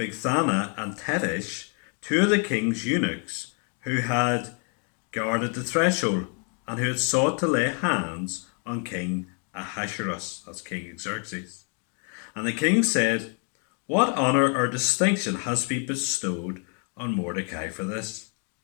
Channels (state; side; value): quieter; right; 39.8 dB